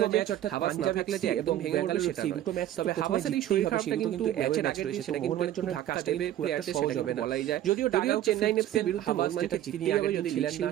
যে হাভাস না থাকলে যে একদম ভেঙে পড়বে সেটা দুটো ম্যাচ, তবে হাভাসের এই শরীর খারাপটা কিন্তু ম্যাচের আগে রয়েছে, সেটা মোহনবাগানের জন্য ধাক্কা দেবে, প্লেয়ারদের সহজ হবে না বলাই যায়। যদিও চেন্নাই এফসির বিরুদ্ধে মোহনবাগানকে জিততে হবে, যদি ছিলেন না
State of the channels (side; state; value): left; quieter; 12.4 dB